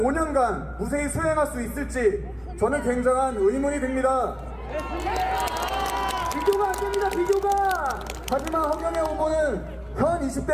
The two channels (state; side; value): identical; both; correlation 1.00